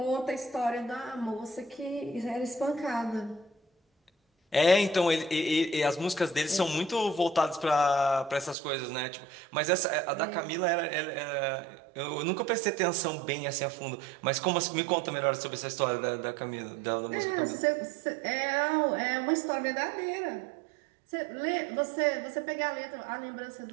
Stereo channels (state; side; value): drops out; left; at 8.6 s